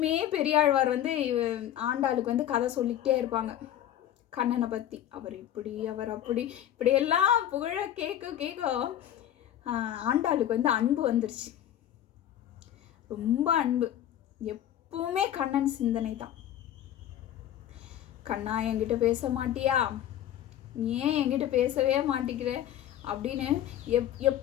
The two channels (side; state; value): right; quieter; 11.4 dB